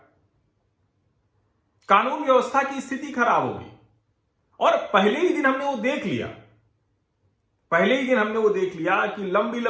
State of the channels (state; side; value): identical; both; correlation 1.00